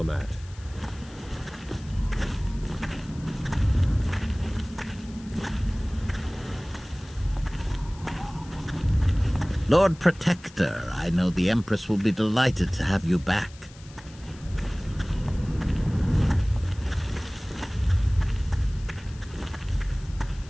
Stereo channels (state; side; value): noise; left; hiss, 23 dB below the sound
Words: Lord Protector, I know the Empress will be delighted to have you back.